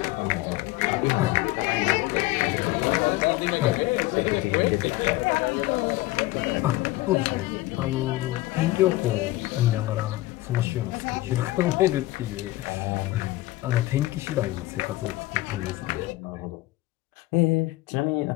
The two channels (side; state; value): right; quieter; 18.4 dB